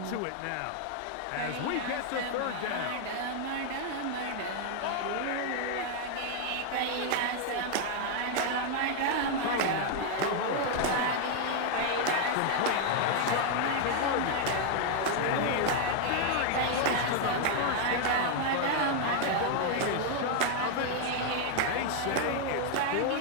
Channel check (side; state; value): both; different; correlation 0.00